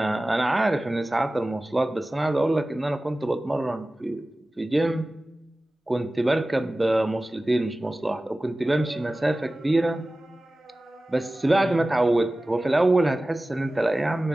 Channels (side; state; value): both; normal; correlation 0.97